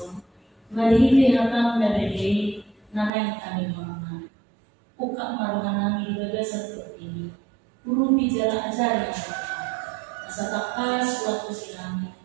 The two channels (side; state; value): left; drops out; at 3.1 s